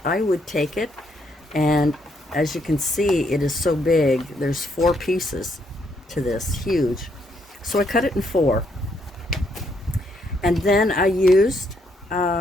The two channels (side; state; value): both; normal; correlation 0.73